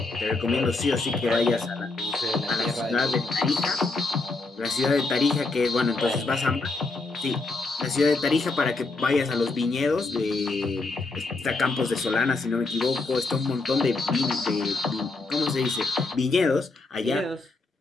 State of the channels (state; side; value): quieter; right; 3.5 dB